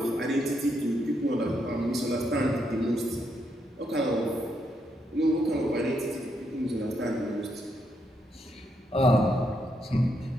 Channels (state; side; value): normal; both; correlation 0.78